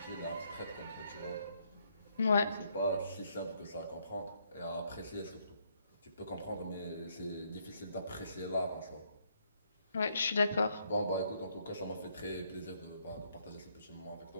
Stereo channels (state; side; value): inverted; both; correlation -0.72